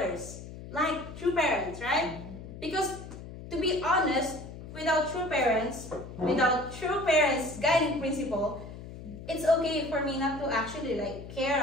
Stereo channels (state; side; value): noise; left; hum, 12 dB below the sound